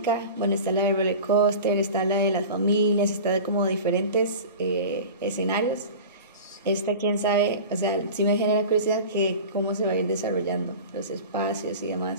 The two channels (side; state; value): both; inverted; correlation -0.35